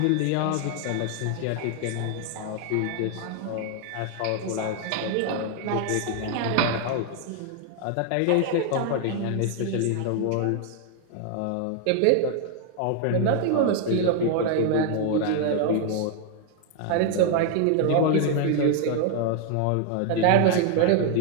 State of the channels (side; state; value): both; different; correlation 0.00